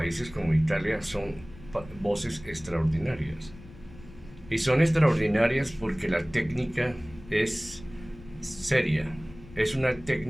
como Italia son voces extraordinarias? Y son extraordinarias porque la técnica es seria, es una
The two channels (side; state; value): left; noise; rumble, 19 dB below the sound